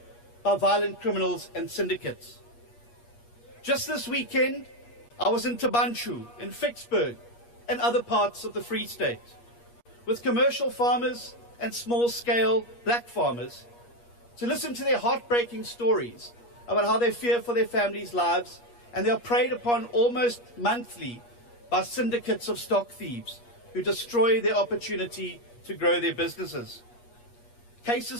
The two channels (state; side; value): late; right; 8.4 ms